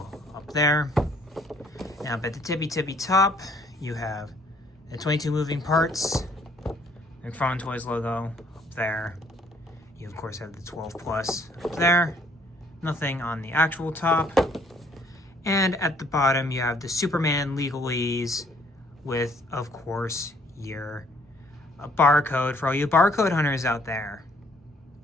up there. Now up at the tippy top, you have the 22 moving parts. McFarlane Toys logo up there. You, of course, have the 12 plus up there. Nothing on the actual top. And at the bottom you have the Superman legalese with, of course, your barcode for all you barcode hunters out there,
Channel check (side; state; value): both; normal; correlation 0.63